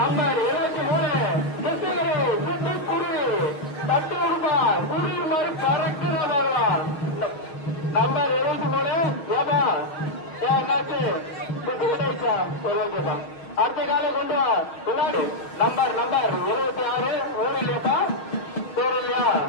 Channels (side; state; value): right; late; 6.3 ms